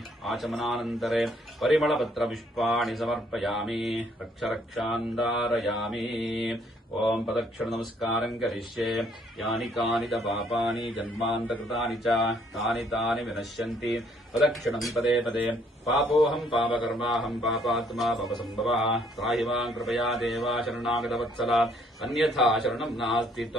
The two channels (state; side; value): normal; both; correlation 0.65